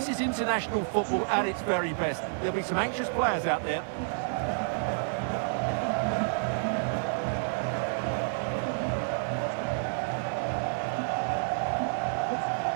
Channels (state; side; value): silent; left; 58 dB below the other